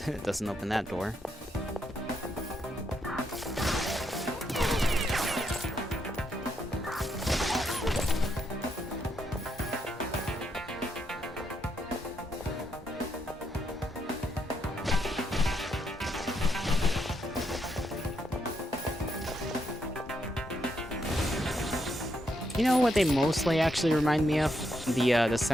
doesn't open that door. You know what they mostly actually remind me of? The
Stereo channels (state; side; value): normal; both; correlation 0.78